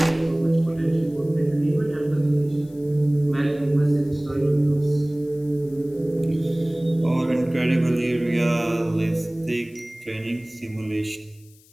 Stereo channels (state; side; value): noise; left; hiss, 28 dB below the sound